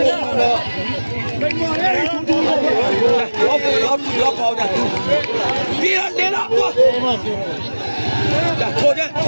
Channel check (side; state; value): both; inverted; correlation -1.00